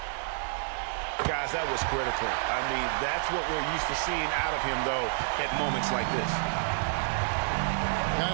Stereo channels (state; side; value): silent; left; digital silence